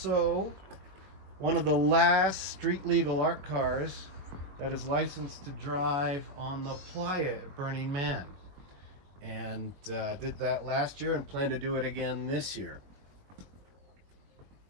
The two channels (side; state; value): left; late; 22 ms